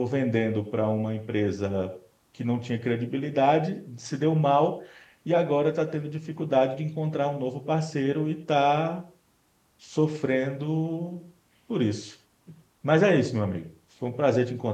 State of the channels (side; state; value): both; identical; correlation 1.00